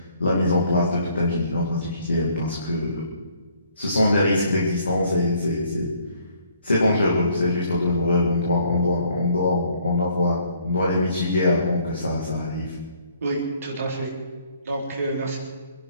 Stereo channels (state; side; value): inverted; both; correlation -0.63